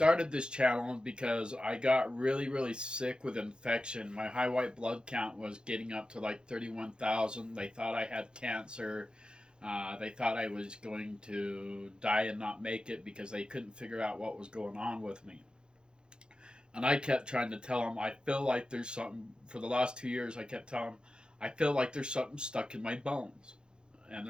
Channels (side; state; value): left; late; 0.049 ms